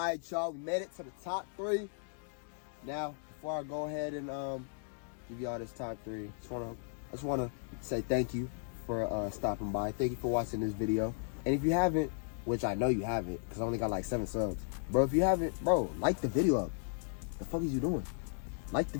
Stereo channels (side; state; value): right; silent; digital silence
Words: y'all, we made it to the top 3. Now, before I go ahead and give y'all this top 3, I just wanna say thank you for stopping by. Thank you for watching this video. And if you haven't, which I know you haven't, because I only got like 7 subs, bro, if you haven't, bro, like the video up. The fuck is you doing? Like the